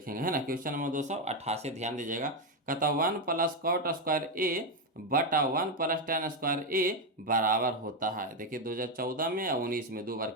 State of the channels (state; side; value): normal; both; correlation 0.06